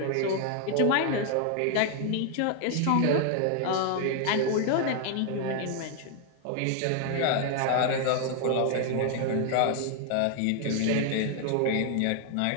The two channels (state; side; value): different; both; correlation 0.00